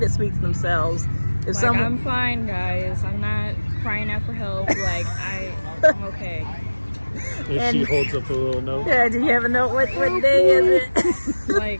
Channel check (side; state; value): both; inverted; correlation -1.00